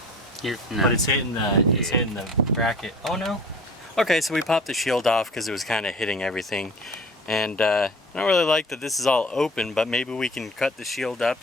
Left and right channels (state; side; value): normal; both; correlation 0.43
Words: No. But it's hitting the bracket. Oh no. Okay, so we popped the shield off because it was kind of hitting everything, and I don't really like that this is all open. But maybe we can cut the shield up